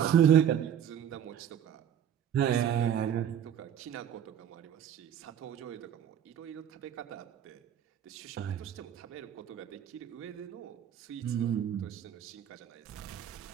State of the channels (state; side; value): quieter; left; 9.5 dB